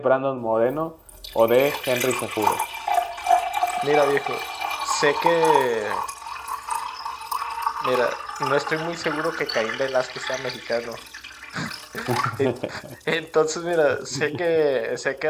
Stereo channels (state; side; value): identical; both; correlation 1.00